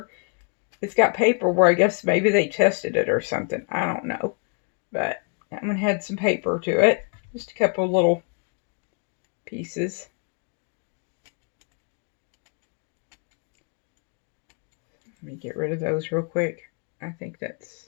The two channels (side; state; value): right; quieter; 35.4 dB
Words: it's got paper where I guess maybe they tested it or something. I don't know. But that one had some paper to it. Just a couple of little pieces. Let me get rid of those real quick. I think